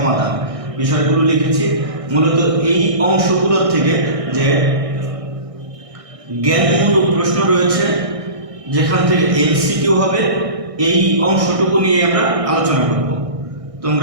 বিষয়গুলো লিখেছি। মূলত এই অংশগুলোর থেকে যে জ্ঞানমূলক প্রশ্ন রয়েছে, যেখান থেকে এমসিকিউ হবে, এই অংশটুকু নিয়ে আমরা আলোচনা করব।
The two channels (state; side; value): late; left; 1.6 ms